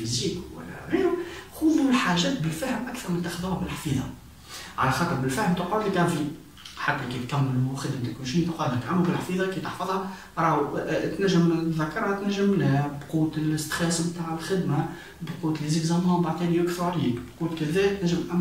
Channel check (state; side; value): identical; both; correlation 1.00